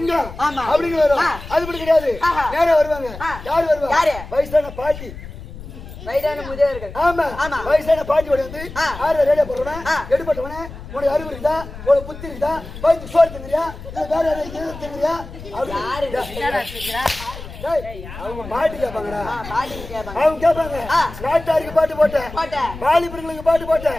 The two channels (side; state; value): left; noise; rumble, 13 dB below the sound